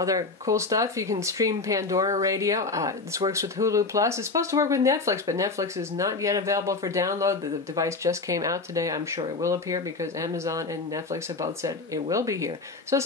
cool stuff. You can stream Pandora Radio. This works with Hulu Plus. It's supposed to work with Netflix, but Netflix is not yet available for download. The device just came out today. I'm sure it will appear because Amazon and Netflix have both said it will be here. So it's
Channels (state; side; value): quieter; right; 3.8 dB